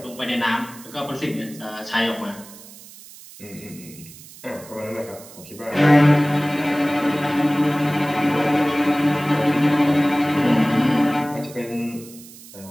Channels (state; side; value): noise; right; hiss, 19 dB below the sound